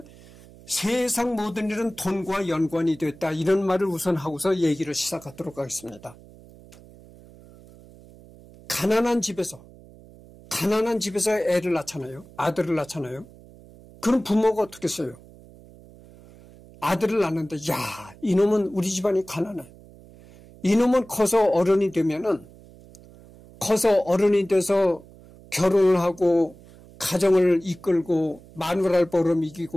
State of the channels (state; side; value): noise; right; hum, 22 dB below the sound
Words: 세상 모든 일은 돈과 연관이 됐다 이런 말을 우선 하고서 얘기를 시작하도록 하겠습니다. 가난한 집에서 애를 낳잖아요. 아들을 낳잖아요. 그럼 부모가 어떻게 써요? 아들을 낳는데 야, 이놈은 우리 집안이 가난해. 이놈은 커서 어른이 돼서 결혼을 하고 가정을 이끌고 마누라를